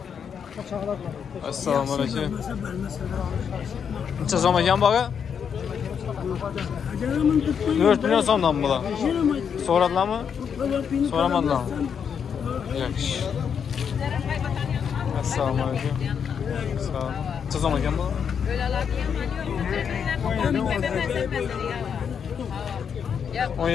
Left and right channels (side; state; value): right; quieter; 7.3 dB